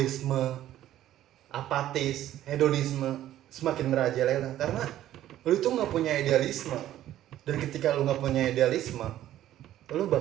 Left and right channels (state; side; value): quieter; left; 12.9 dB